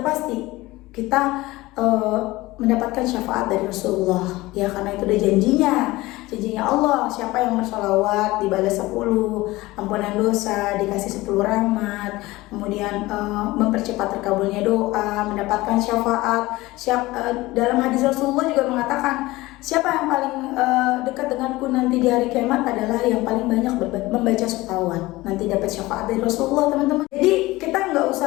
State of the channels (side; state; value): right; quieter; 19.5 dB